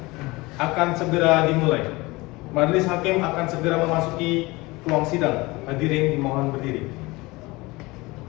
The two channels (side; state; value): right; quieter; 22.5 dB